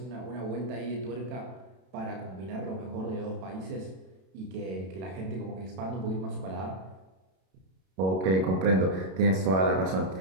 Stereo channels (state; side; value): late; left; 32 ms